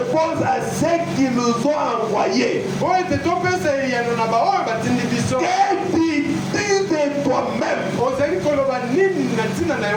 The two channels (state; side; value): identical; both; correlation 1.00